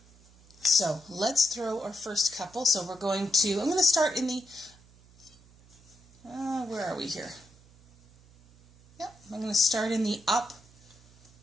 So let's throw our first couple. So I'm going to start in the, where are we here? Yep, I'm going to start in the up.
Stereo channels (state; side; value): noise; right; hum, 26 dB below the sound